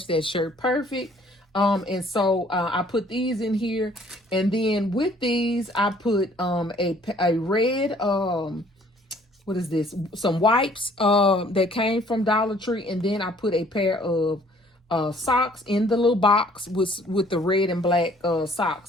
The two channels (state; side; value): normal; both; correlation 0.58